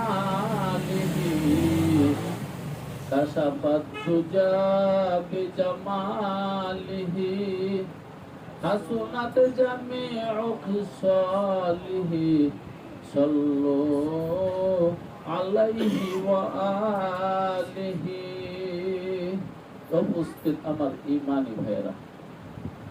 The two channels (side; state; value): both; identical; correlation 1.00